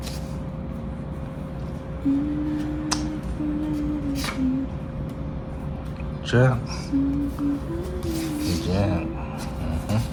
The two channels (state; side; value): identical; both; correlation 1.00